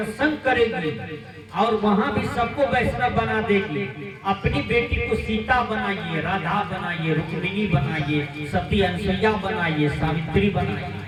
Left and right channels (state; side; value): identical; both; correlation 1.00